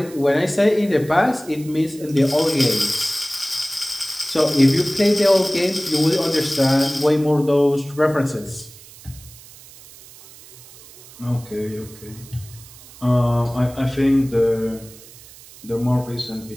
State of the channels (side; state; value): right; noise; hiss, 20 dB below the sound